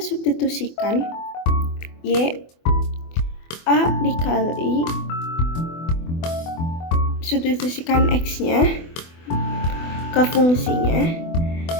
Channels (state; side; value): late; right; 24 ms